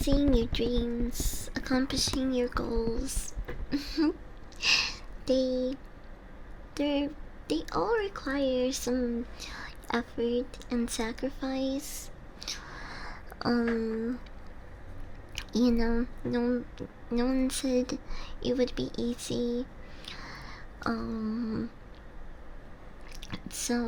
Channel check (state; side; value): identical; both; correlation 1.00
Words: your dreams, accomplishing your goals. they they all require some effort and sacrifice. No one said it would be easy.